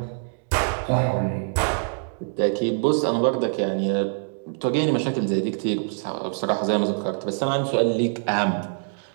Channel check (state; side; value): silent; left; digital silence